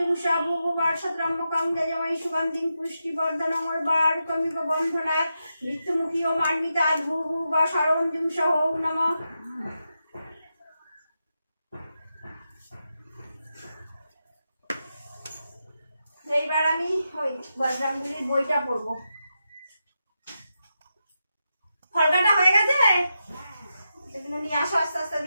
ভুভুবার সদ্রম্মকং যজমৈ সুগন্ধিং পুষ্টিবর্ধনং উর্বারুকমিব বন্ধনাৎ মৃত্যুমুখী ও মার্মিতাৎ ভুভুবা সরং জুংসা ওম নমঃ। এইবার আমি ওই বজরঙ্গবলীর বইটা পড়বো। ফলকাটা হয়ে গেছে, সেগুলো নিয়ে আসো, আস্তে আস্তে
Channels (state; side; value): inverted; both; correlation -0.88